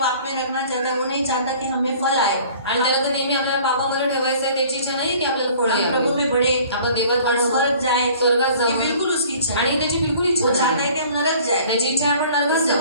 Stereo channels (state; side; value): inverted; both; correlation -0.50